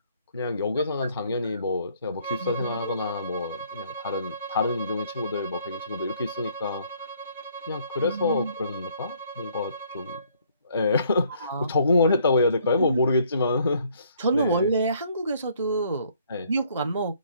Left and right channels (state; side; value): inverted; both; correlation -0.64